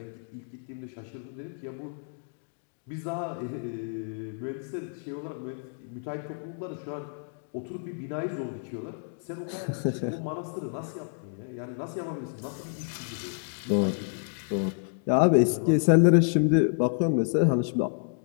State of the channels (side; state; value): right; silent; digital silence